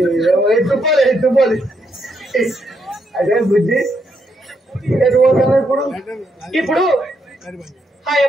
తుప్పోలేదు అదే బుద్ధి. ఇప్పుడు ఆ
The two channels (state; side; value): normal; both; correlation 0.78